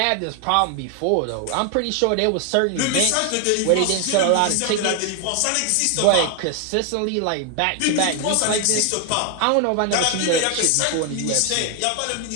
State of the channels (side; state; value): both; different; correlation 0.00